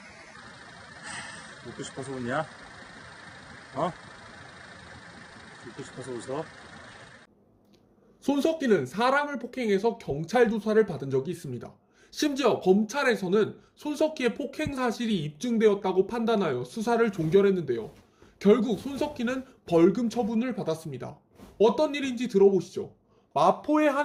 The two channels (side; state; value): both; identical; correlation 1.00